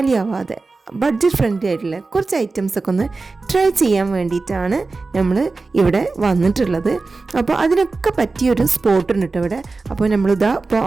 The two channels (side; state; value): left; quieter; 3.8 dB